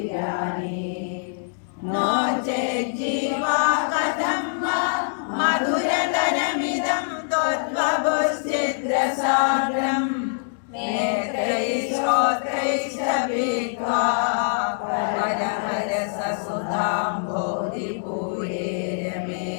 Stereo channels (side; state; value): right; silent; digital silence